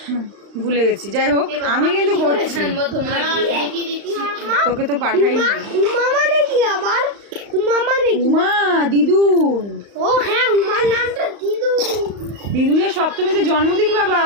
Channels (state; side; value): late; left; 35 ms